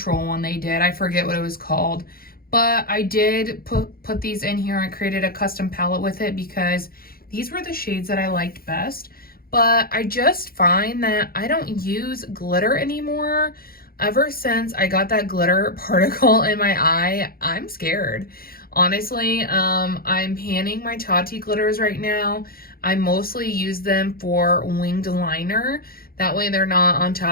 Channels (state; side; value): late; right; 0.43 ms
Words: one they did. I forget what it was called, but I did put these in here and created a custom palette with it because these were the shades that I liked best. But I just find that I don't use glitter anymore. Ever since I got that glitter particle in my eye, I'm scared. Honestly, I'm panning my Tati glitters right now. I mostly use them for winged liner. That way they're not on